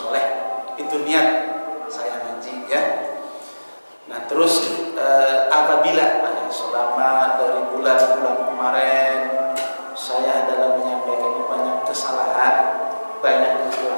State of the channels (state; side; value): inverted; both; correlation -1.00